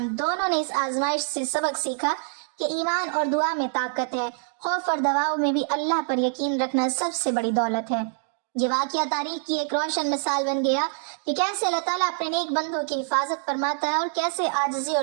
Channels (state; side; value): silent; left; 61 dB below the other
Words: دونوں نے اس آزمائش سے سبق سیکھا کہ ایمان اور دعا میں طاقت ہے، خوف اور دباؤ میں بھی اللہ پر یقین رکھنا سب سے بڑی دولت ہے۔ یہ واقعہ تاریخ کی ایک روشن مثال بن گیا کہ کیسے اللہ تعالیٰ اپنے نیک بندوں کی حفاظت فرماتا ہے اور کیسے عاجزی اور